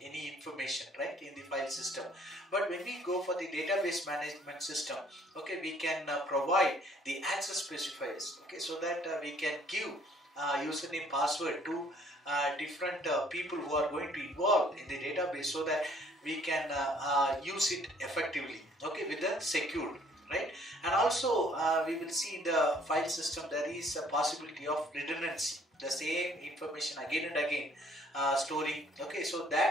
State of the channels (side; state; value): both; normal; correlation 0.60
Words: any information, right, in the file system. But when we go for the database management system, okay, we can provide the access specifiers. Okay, so that we can give username, password to different people who are going to involve in the database, so that we can use it effectively, okay, with the secured, right? And also we will see in the file system there is a possibility of redundancy, the same information again and again storing. Okay, so